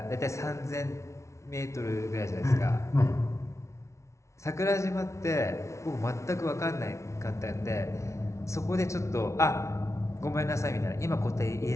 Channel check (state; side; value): late; right; 0.14 ms